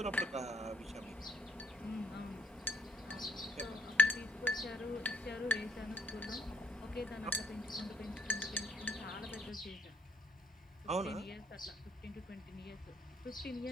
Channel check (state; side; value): normal; both; correlation 0.70